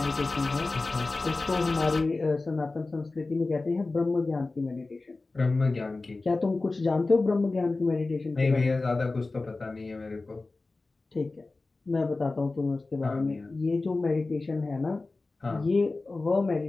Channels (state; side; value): quieter; right; 3.4 dB